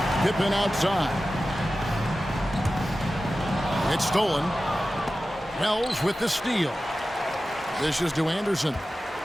Pippen outside. It's stolen. Wells with the steal. This is to Anderson.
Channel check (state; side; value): normal; both; correlation 0.94